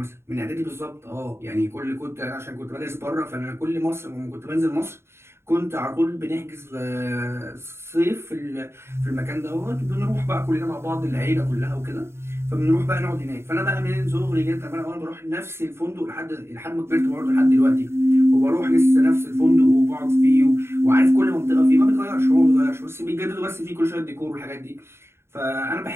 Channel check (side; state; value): left; late; 0.12 ms